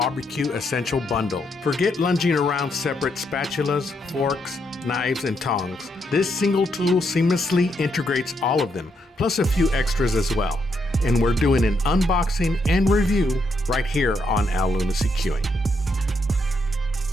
Essentials Bundle. Forget lunging around separate spatulas, forks, knives, and tongs. This single tool seamlessly integrates all of them, plus a few extras as well. And we're doing an unboxing and review right here on Al Lunacy Queuing.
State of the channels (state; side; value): normal; both; correlation 0.77